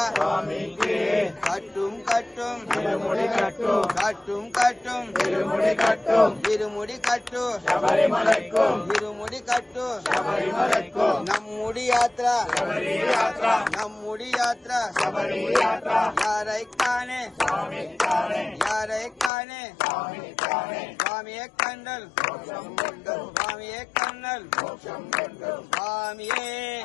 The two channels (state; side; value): drops out; right; at 19.3 s